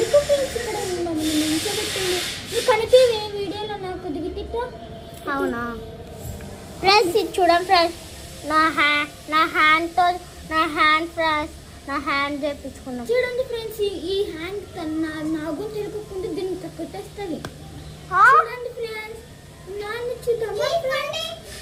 ఫ్రెండ్స్ ఇక్కడ మమ్మల్ని నిల్చోబెట్టింది? నీకు కనిపించే వీడియోలో నాకు దిగిటిట్టా? అవునా ఫ్రెండ్స్, ఇది చూడండి ఫ్రెండ్స్, నా హ్యాండ్ ఫ్రెండ్స్, నా హ్యాండ్ చేపించుకున్నాం. చూడండి ఫ్రెండ్స్, ఈ హ్యాండ్ నాగు తిరగకుండా దీన్ని కొట్టేస్తుంది. చూడండి ఫ్రెండ్స్, నాన్న చూద్దామా?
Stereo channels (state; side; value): identical; both; correlation 1.00